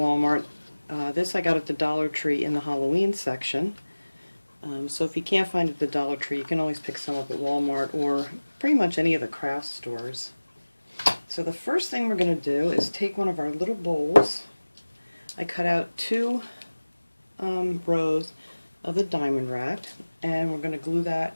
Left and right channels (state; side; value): inverted; both; correlation -1.00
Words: This I got at the Dollar Tree in the Halloween section. So if you can't find it at the Dollar Tree, you can always pick some up at Walmart or pretty much any of the craft stores. So the first thing we're going to do is take one of our little bowls. I cut out 2 rows of the diamond wrap, and we're going to glue that